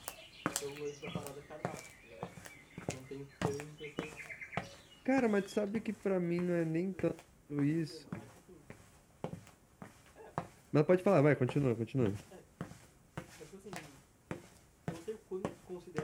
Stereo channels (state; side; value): identical; both; correlation 1.00